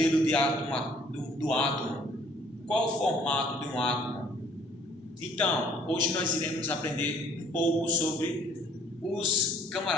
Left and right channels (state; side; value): normal; both; correlation 0.59